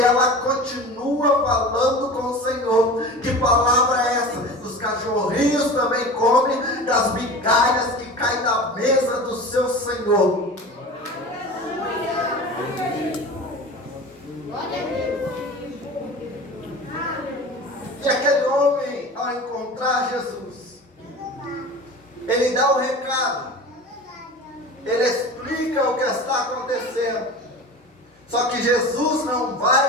continua falando com o Senhor. Que palavra é essa? Os cachorrinhos também comem das migalhas que caem da mesa do seu Senhor. E aquele homem, ao encontrar Jesus, ele dá o recado, ele explica o que está acontecendo. Só que Jesus não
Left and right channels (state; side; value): normal; both; correlation 0.35